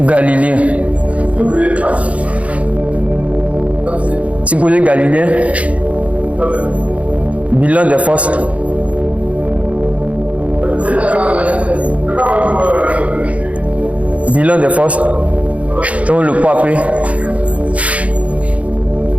Galiléen. Supposé galiléen. Bilan des forces. Bilan des forces. Donc le poids P.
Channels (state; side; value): late; left; 0.065 ms